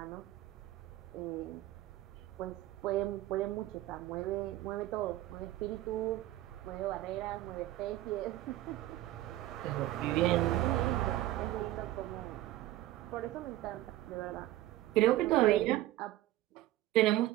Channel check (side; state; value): left; quieter; 15.5 dB